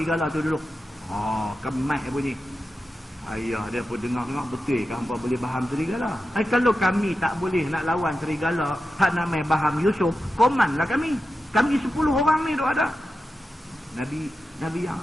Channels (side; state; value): both; normal; correlation 0.91